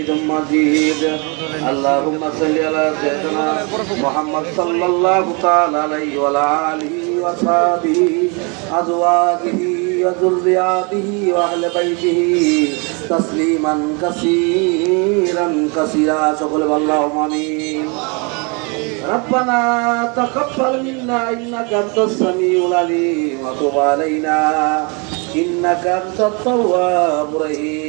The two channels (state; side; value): quieter; left; 32.3 dB